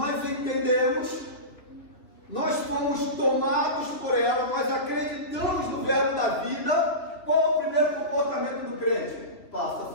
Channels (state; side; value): late; right; 2.8 ms